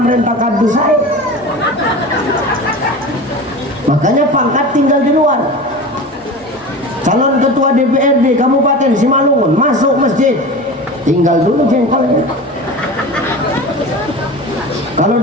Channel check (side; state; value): both; normal; correlation 0.32